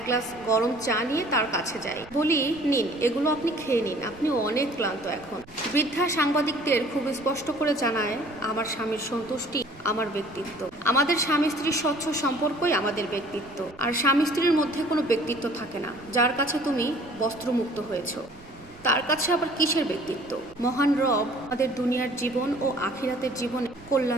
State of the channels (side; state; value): right; noise; rumble, 23 dB below the sound